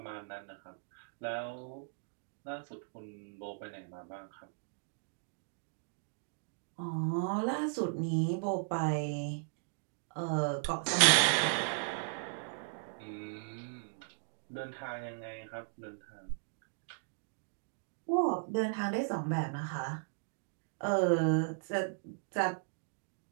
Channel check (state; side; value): silent; left; digital silence